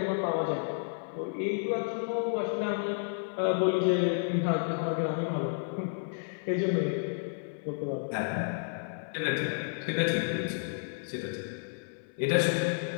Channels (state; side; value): silent; right; 55 dB below the other